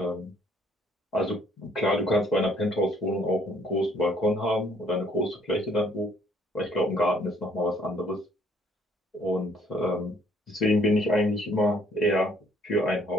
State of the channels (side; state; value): both; normal; correlation 0.64